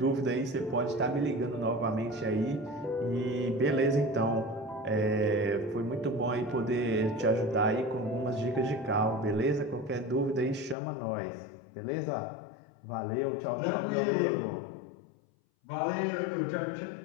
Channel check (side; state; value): right; drops out; at 10.8 s